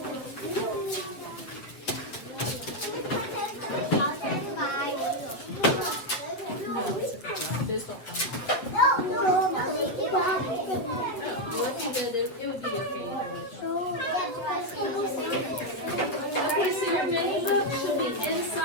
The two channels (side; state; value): right; late; 8.3 ms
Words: Those don't come out. Well, if you did, it would be okay either way. Okay, so your mini book should be